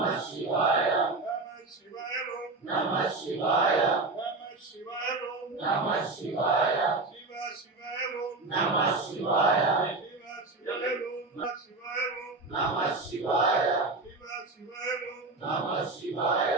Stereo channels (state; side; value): quieter; left; 3.4 dB